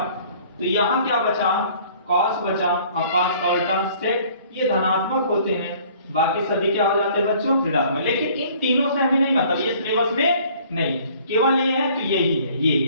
तो यहाँ क्या बचा? cos बचा, और cos का उल्टा sec, ये धनात्मक होते हैं। बाकी सभी क्या हो जाते हैं बच्चों? ऋणात्मक। लेकिन इन तीनों से हमें नहीं मतलब, ये सिलेबस में नहीं, केवल ये है तो यही है, ये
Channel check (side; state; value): both; inverted; correlation -0.54